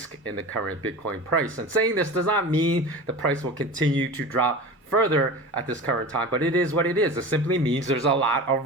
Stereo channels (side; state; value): both; normal; correlation 0.32